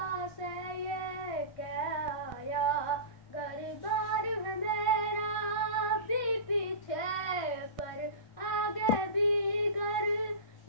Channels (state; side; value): late; right; 1.5 ms